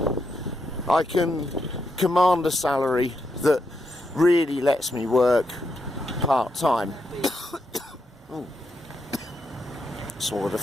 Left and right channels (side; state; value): both; normal; correlation 0.82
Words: I can command a salary that really lets me work part-time. Swallowed a